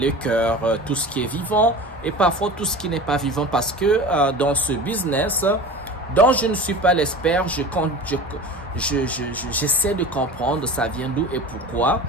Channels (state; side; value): normal; both; correlation 0.35